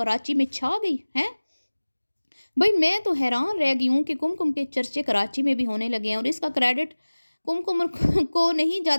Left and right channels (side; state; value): both; inverted; correlation -1.00